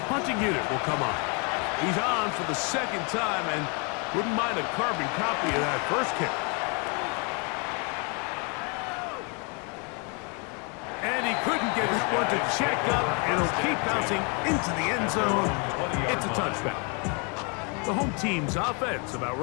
punting unit will come on. He's on for the 2nd time, and wouldn't mind a carbon copy of that first kick. And he couldn't get his one to check up, and he'll keep bouncing into the end zone. It's a touchdown. The home team's offense about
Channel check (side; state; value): right; quieter; 34.4 dB